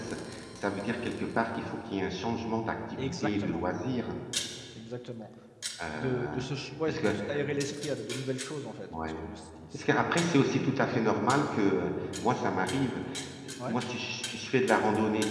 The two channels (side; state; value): both; identical; correlation 1.00